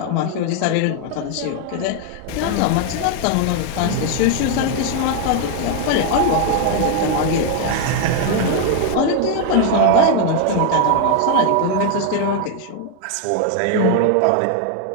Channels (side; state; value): both; different; correlation 0.00